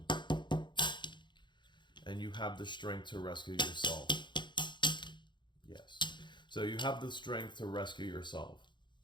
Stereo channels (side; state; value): right; late; 0.22 ms